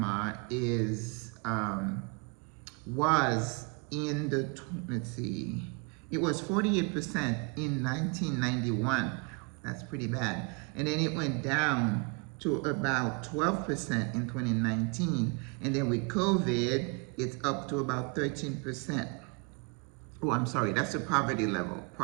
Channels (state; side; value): quieter; left; 32.0 dB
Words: was in the, let's see, it was 48% in 1991. That's pretty bad. And then it went down to about 12% in 2019. And then with COVID, it's up to about 13%. Oh, I'm sorry, that's the poverty level.